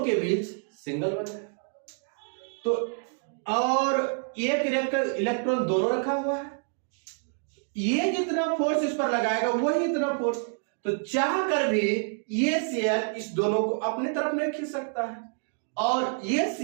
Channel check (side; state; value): left; silent; 60 dB below the other